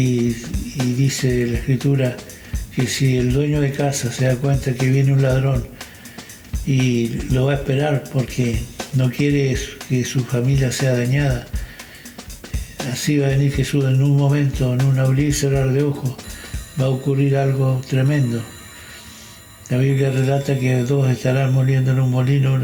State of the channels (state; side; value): identical; both; correlation 1.00